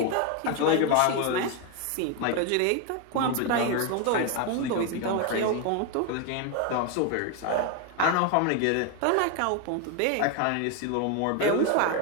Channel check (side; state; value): both; different; correlation 0.01